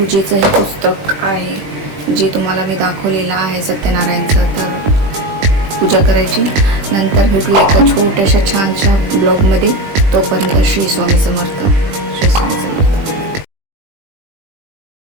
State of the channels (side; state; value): left; late; 20 ms